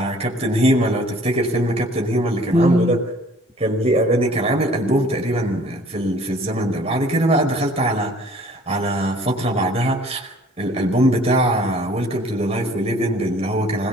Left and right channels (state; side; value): normal; both; correlation 0.54